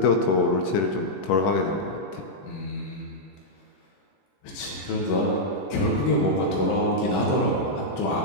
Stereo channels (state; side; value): late; right; 21 ms